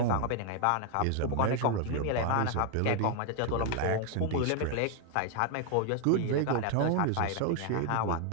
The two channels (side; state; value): both; different; correlation 0.00